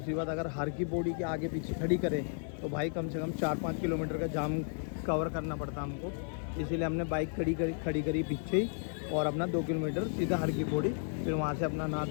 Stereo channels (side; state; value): right; silent; 55 dB below the other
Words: बात, अगर हर की पौड़ी के आगे पीछे खड़ी करें तो भाई कम से कम 4-5 किलोमीटर का जाम कवर करना पड़ता हमको। इसीलिए हमने बाइक खड़ी करी पीछे ही और अपना 2 किलोमीटर सीधा हर की पौड़ी, फिर वहाँ से अपना नहा